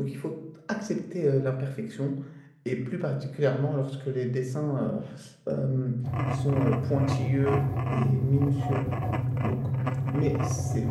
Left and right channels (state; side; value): identical; both; correlation 1.00